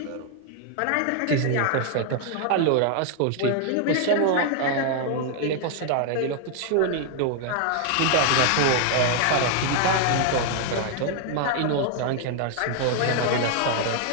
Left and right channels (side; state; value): both; different; correlation 0.00